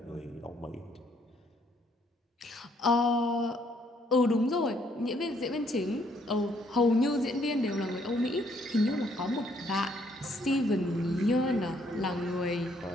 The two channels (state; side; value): normal; both; correlation 0.68